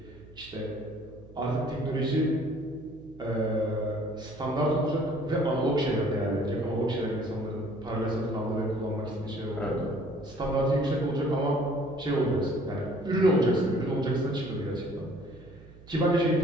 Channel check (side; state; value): right; noise; hum, 21 dB below the sound